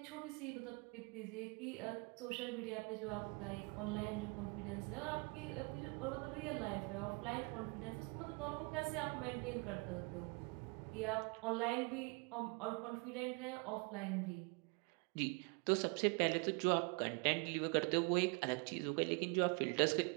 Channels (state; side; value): quieter; left; 32.0 dB